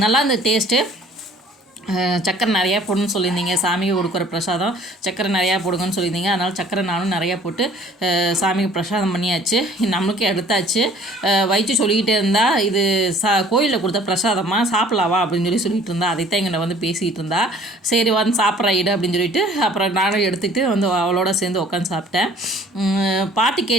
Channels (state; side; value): normal; both; correlation 0.53